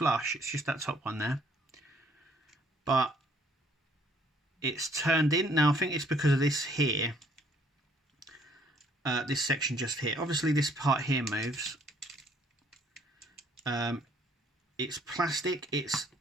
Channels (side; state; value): both; normal; correlation 0.62